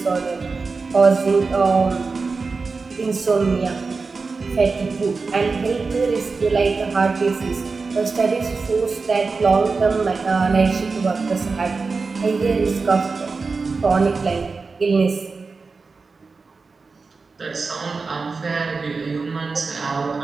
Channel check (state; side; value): quieter; left; 4.3 dB